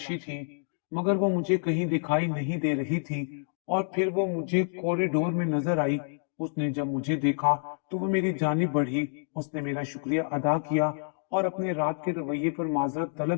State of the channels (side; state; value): right; silent; digital silence